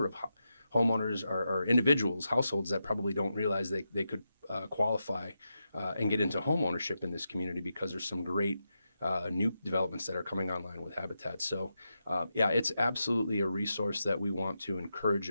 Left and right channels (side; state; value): both; inverted; correlation -0.88